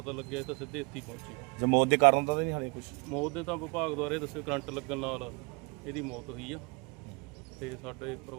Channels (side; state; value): left; quieter; 30.5 dB